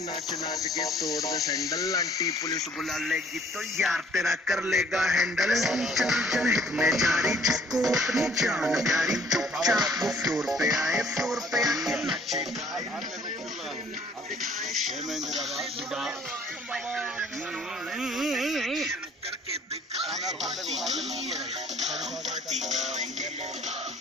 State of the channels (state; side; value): normal; both; correlation 0.58